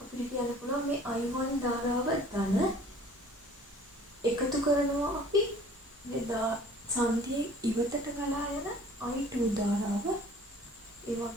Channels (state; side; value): normal; both; correlation 0.50